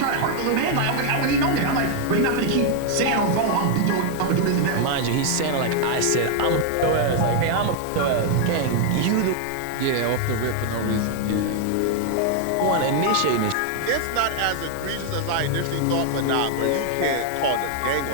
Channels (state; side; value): different; both; correlation 0.00